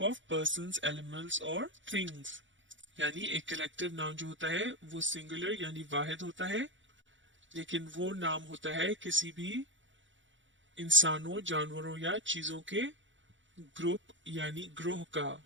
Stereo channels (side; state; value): left; late; 0.55 ms